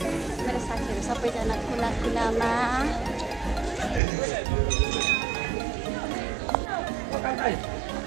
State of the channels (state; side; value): drops out; left; at 4.0 s